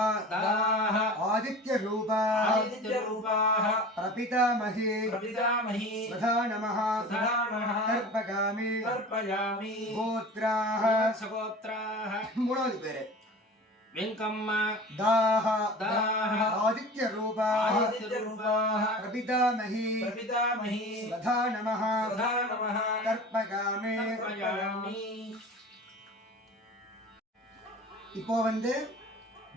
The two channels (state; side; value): normal; both; correlation 0.37